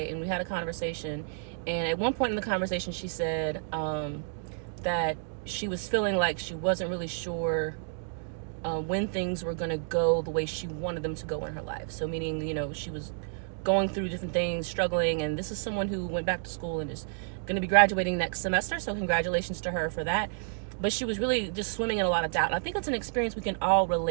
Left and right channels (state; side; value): silent; left; digital silence